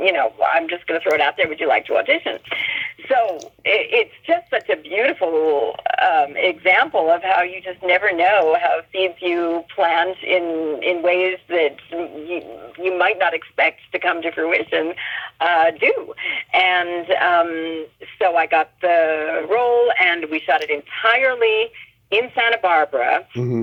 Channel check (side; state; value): both; identical; correlation 1.00